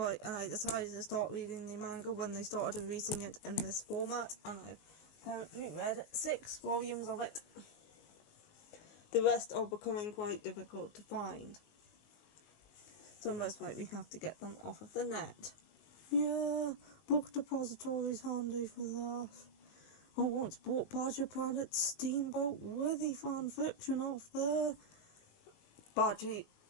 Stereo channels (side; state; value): right; late; 19 ms